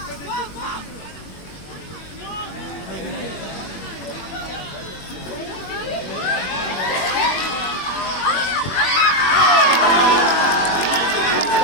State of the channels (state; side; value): late; right; 21 ms